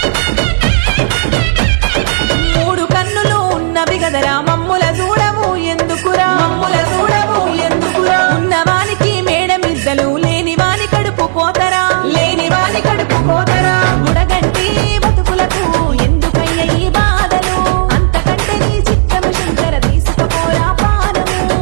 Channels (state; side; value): silent; left; 69 dB below the other